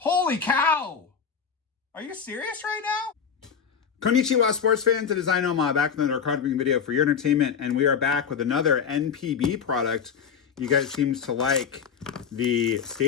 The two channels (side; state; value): right; quieter; 6.9 dB